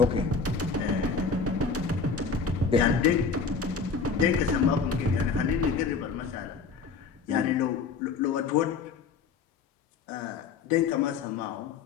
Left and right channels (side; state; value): right; quieter; 5.2 dB